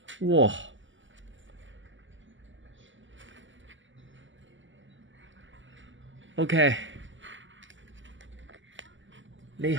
哇！OK，呢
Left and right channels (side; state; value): left; late; 0.55 ms